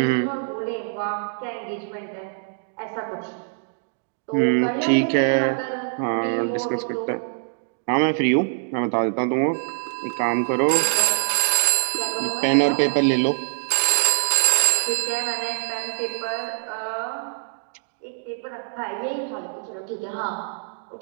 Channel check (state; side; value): silent; left; digital silence